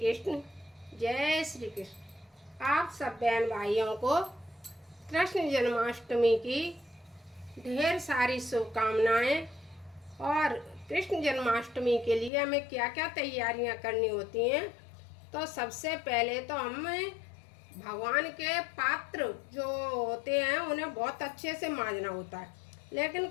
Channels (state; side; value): drops out; right; at 12.3 s